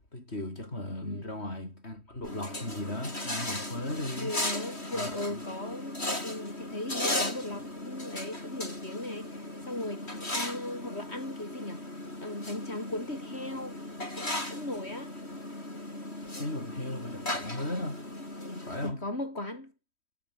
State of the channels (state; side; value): late; right; 3.1 ms